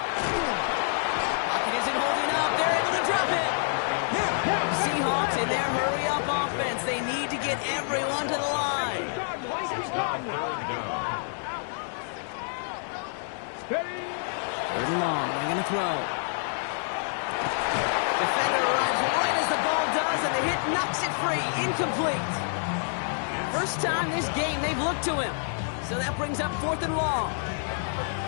Pocket isn't holding up. They're able to drop it. Seahawks in their hurry-up offense. They need to get everyone to the line. Third and long. They're going to throw. Defender arrives right as the ball does, and the hit knocks it free. Incomplete. First time this game they've looked to him. So that brings up 4th and long.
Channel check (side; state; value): right; silent; digital silence